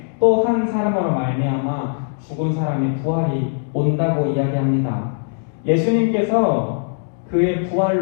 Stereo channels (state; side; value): silent; right; digital silence